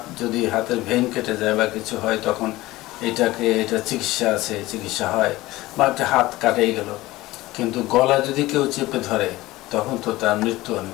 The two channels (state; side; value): quieter; right; 18.3 dB